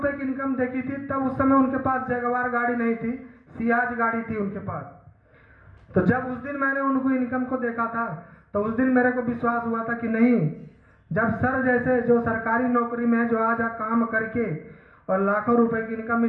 की इनकम देखी थी, तब उस समय उनके पास जगवार गाड़ी नहीं थी, सियाज गाड़ी थी उनके पास। तो जब उस दिन मैंने उनको इनकम को देखा था, तो उस दिन मेरे को विश्वास हुआ था कि नहीं, जब सर जैसे जो सरकारी नौकरी में है, जो आज काम करके और लाखों रुपए की इनकम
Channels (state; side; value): identical; both; correlation 1.00